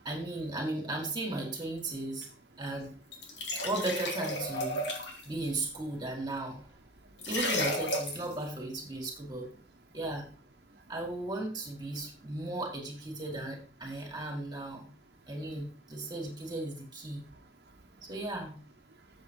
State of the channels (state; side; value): normal; both; correlation 0.37